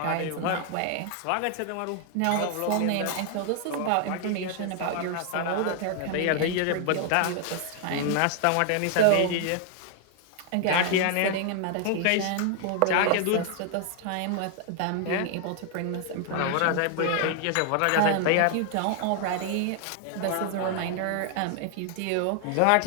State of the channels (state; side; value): different; both; correlation 0.00